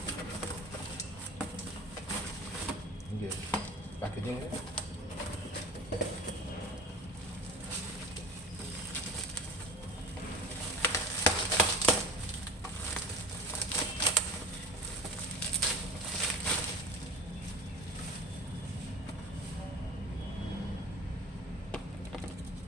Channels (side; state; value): both; normal; correlation 0.35